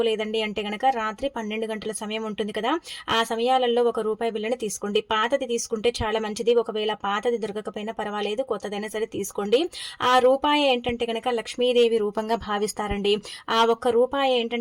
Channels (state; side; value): identical; both; correlation 1.00